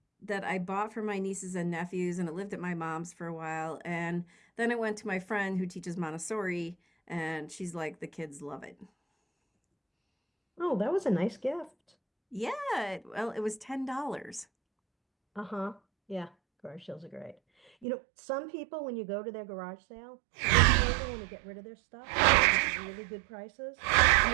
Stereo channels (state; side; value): drops out; left; at 17.9 s